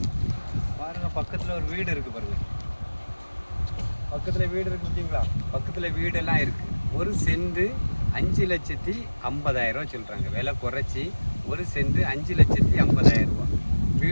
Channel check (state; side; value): inverted; both; correlation -1.00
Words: பாருங்கள், பக்கத்தில் ஒரு வீடு இருக்குது பாருங்கள். பக்கத்தில் வீடு இருக்குது பார்த்தீங்களா? பக்கத்தில் வீடெல்லாம் இருக்குது. ஒரு சென்ட் 5,50,000 சொல்கிறாங்க. விலை குறைச்சி ஒரு சென்ட் 5,50,000 ரூபா.